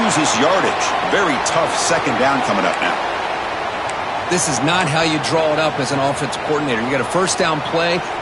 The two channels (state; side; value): identical; both; correlation 1.00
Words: yardage. Very tough 2nd down coming up now. This is not how you draw it up as an offensive coordinator. You got a first down play,